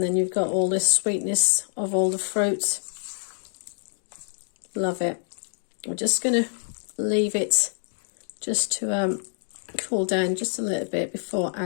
then you've got all this sweetness of all the fruit. Love it. We're just going to leave it just to cool down just a little bit before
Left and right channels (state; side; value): silent; right; digital silence